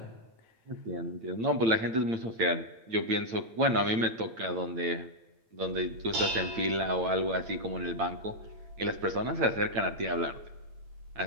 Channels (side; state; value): left; late; 8.9 ms